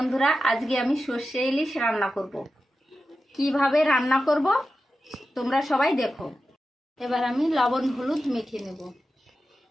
আজকে আমি সর্ষে ইলিশ রান্না করব। কিভাবে রান্না করব তোমরা সবাই দেখো। এবার আমি লবণ হলুদ মেখে নেব।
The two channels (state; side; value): normal; both; correlation 0.92